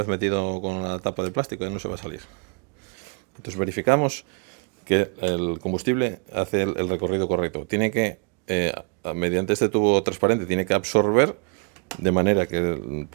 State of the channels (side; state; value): left; quieter; 36.3 dB